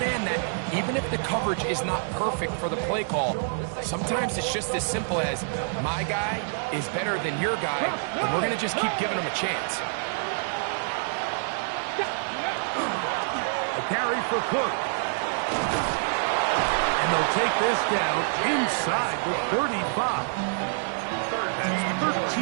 that even if the coverage is not perfect for the play call, sometimes it's just as simple as my guy is better than your guy, and we're going to just keep giving him a chance. A carry for Cook. And they'll take this down inside the 35. That's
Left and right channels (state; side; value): silent; left; digital silence